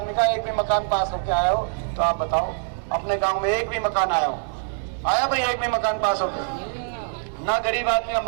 का एक भी मकान पास होके आया हो तो आप बताओ। अपने गांव में एक भी मकान आया हो? आया भाई एक भी मकान पास होके? ना गरीब आदमी का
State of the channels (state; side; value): silent; left; digital silence